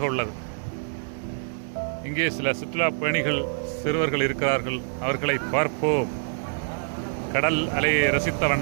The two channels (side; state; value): left; silent; 61 dB below the other